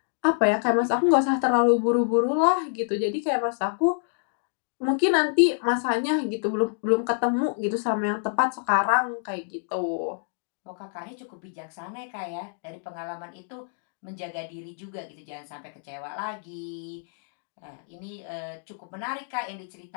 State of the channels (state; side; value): silent; right; digital silence